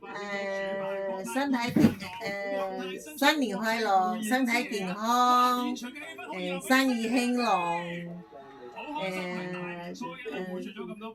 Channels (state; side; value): identical; both; correlation 1.00